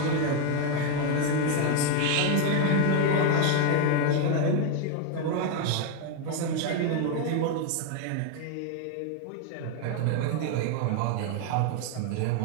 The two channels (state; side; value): different; both; correlation 0.01